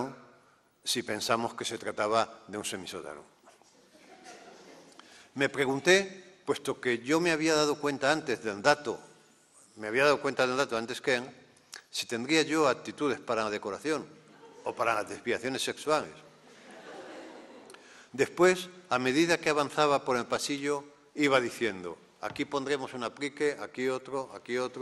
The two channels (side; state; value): both; identical; correlation 1.00